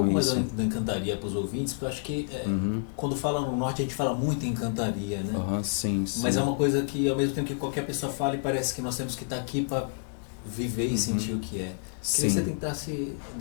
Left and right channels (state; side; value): silent; right; 59 dB below the other